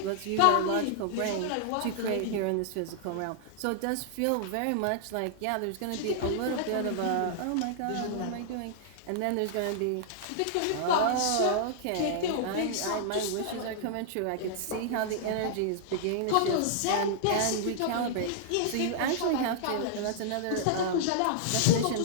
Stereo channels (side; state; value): both; different; correlation -0.01